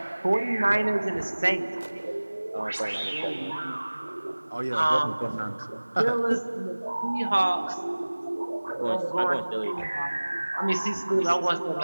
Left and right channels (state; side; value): inverted; both; correlation -1.00